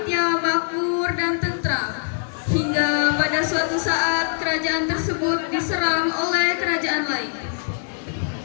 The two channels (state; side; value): silent; right; digital silence